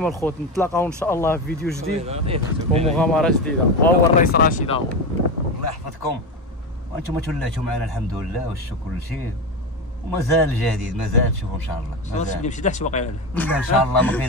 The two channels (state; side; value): normal; both; correlation 0.18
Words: الخوت نتلاقاو ان شاء الله في فيديو جديد ومغامره جديده، وهو الرئيس رشيد اهو. الله يحفظكم وانتم تولاتوا معنا الحمد لله والشكر كل شيء، ومازال جديد مازال تشوفوا ان شاء الله. مازال نمشي حتى باقي ان شاء الله ما